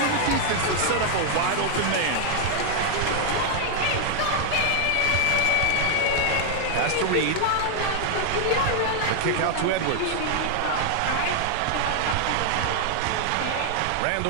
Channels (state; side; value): different; both; correlation 0.00